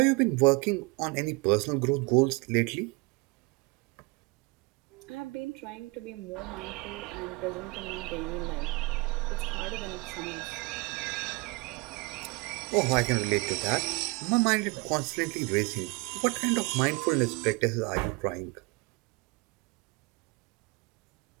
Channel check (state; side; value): quieter; left; 27.3 dB